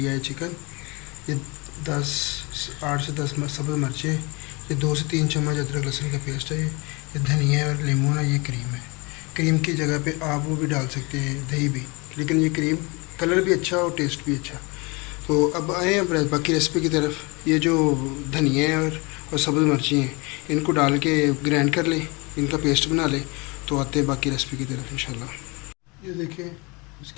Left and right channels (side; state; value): right; quieter; 27.5 dB